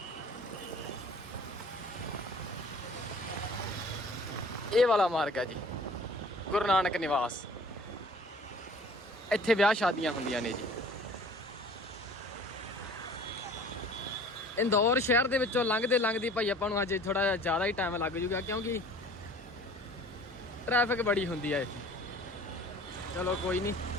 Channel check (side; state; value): both; normal; correlation 0.48